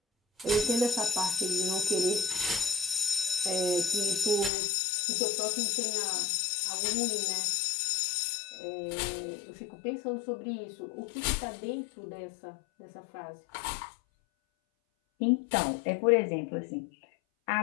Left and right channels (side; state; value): right; drops out; at 4.5 s